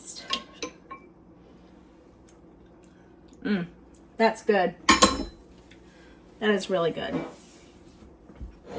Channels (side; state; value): both; identical; correlation 1.00